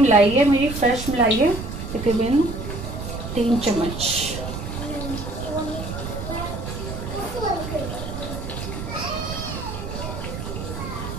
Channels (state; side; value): noise; right; rumble, 7 dB below the sound